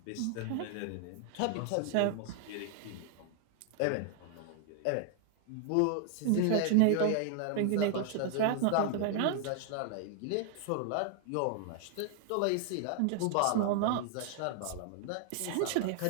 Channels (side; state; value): both; different; correlation 0.00